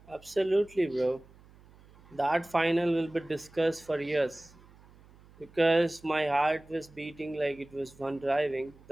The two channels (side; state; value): right; noise; hum, 25 dB below the sound